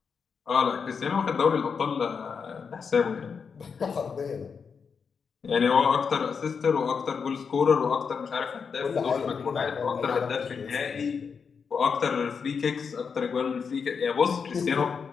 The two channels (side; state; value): right; quieter; 5.9 dB